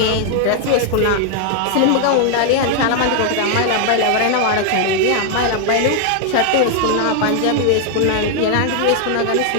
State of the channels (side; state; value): both; different; correlation 0.00